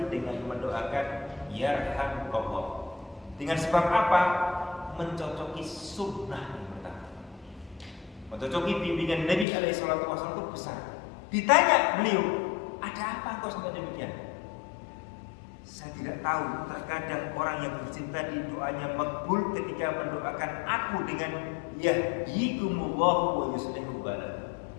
dengan mendoakan yarhamkallah. Dengan sebab apa? Mencocoki sunnah yang pertama, mencocoki bimbingan Nabi alaihi salatu wasallam itu besar. Ditanya beliau, ada apa engkau sampai demikian? Saya tidak tahu, terkadang orang yang bercinta di doanya makbul ketika mendoakan aku dengan yahdikumullahu wa yuslihu balakum.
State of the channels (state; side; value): drops out; right; at 9.5 s